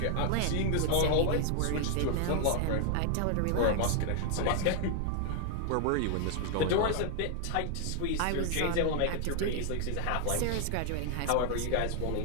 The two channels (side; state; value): both; different; correlation 0.00